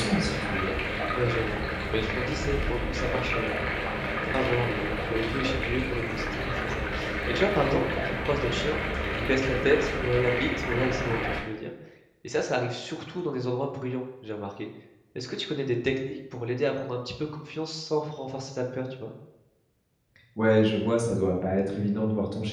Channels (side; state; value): both; identical; correlation 1.00